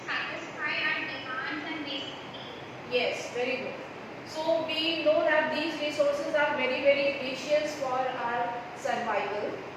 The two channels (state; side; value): identical; both; correlation 1.00